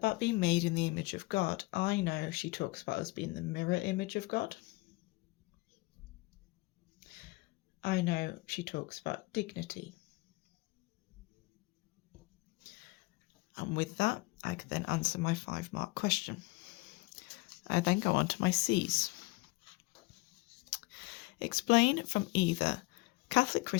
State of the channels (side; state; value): right; quieter; 23.9 dB